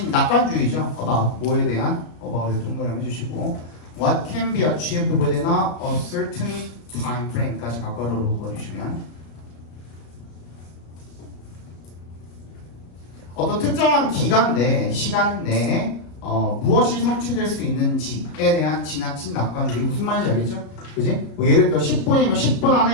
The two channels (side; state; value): right; late; 33 ms